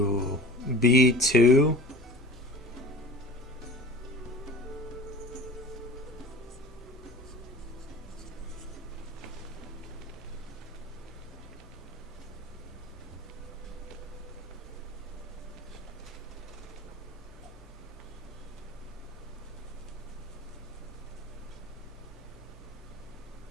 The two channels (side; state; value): both; normal; correlation 0.40